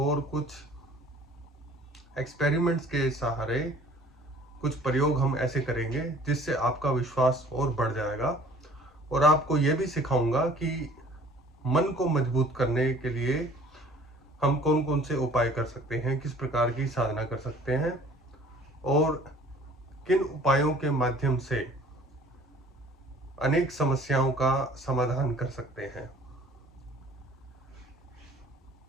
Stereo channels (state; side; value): normal; both; correlation 0.52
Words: कुछ एक्सपेरिमेंट्स के सहारे कुछ प्रयोग हम ऐसे करेंगे जिससे आपका विश्वास और बढ़ जाएगा। और आपको यह भी सिखाऊंगा कि मन को मजबूत करने के लिए हम कौन कौन से उपाय कर सकते हैं, किस प्रकार की साधना कर सकते हैं और किन उपायों के माध्यम से अनेक समस्याओं का समाधान कर सकते हैं।